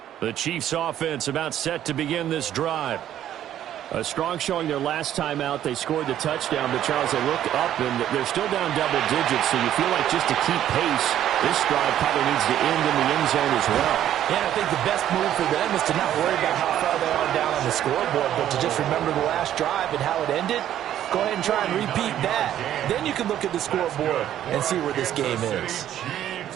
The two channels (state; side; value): quieter; left; 11.4 dB